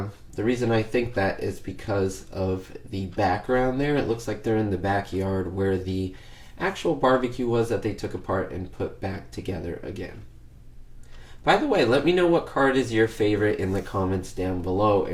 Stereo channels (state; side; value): identical; both; correlation 1.00